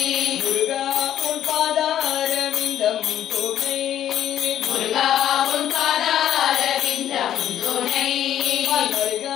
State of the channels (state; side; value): quieter; right; 11.1 dB